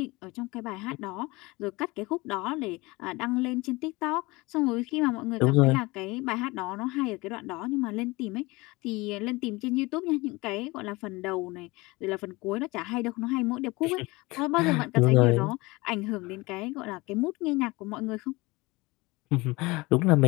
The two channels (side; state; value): right; quieter; 23.0 dB